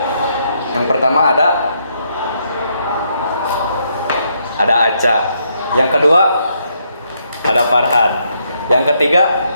Yang pertama ada Aca. Yang kedua ada Farhan. Yang ketiga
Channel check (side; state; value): both; inverted; correlation -0.75